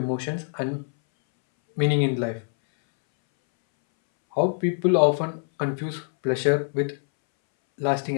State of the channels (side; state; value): right; silent; 62 dB below the other